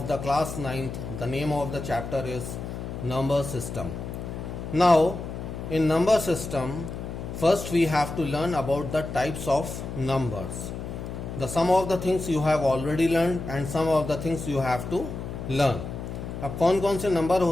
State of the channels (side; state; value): left; noise; hum, 7 dB below the sound